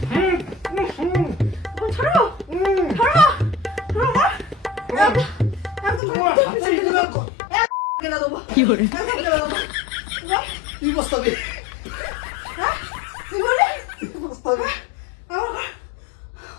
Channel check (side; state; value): right; drops out; at 6.0 s